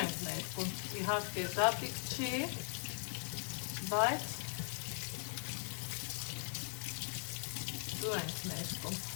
ներկում, իհարկե զատիկ չի, բայց ձու ենք ներկում,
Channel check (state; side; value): silent; right; 51 dB below the other